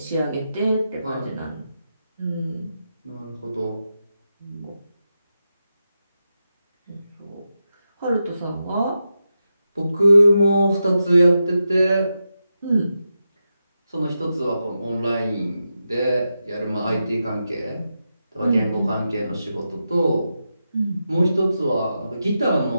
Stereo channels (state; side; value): inverted; both; correlation -0.88